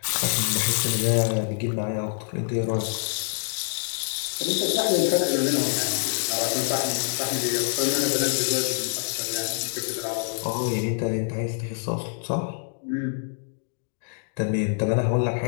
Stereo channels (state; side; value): silent; right; digital silence